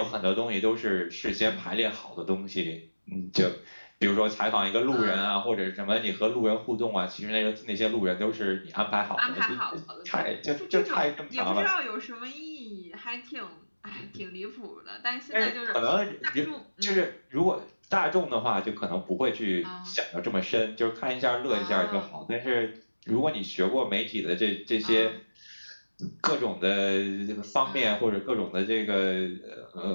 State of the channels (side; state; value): both; inverted; correlation -1.00